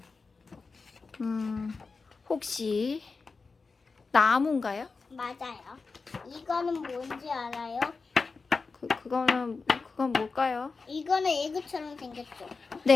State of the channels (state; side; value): quieter; right; 4.4 dB